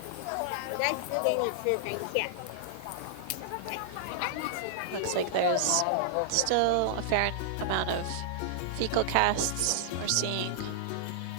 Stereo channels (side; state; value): both; different; correlation -0.01